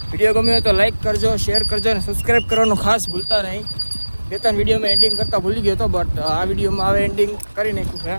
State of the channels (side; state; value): both; inverted; correlation -1.00